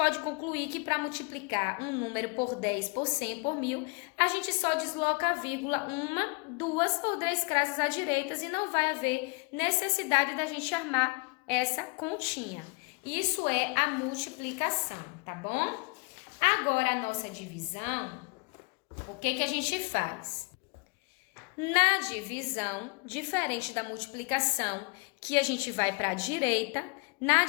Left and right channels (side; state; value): right; quieter; 31.2 dB